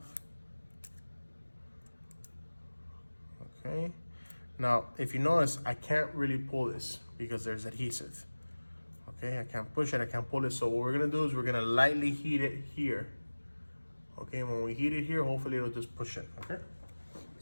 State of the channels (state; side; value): inverted; both; correlation -1.00